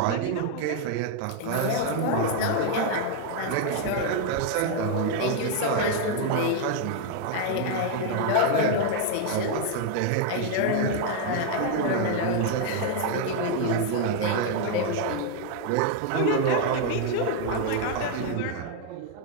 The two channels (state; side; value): different; both; correlation 0.00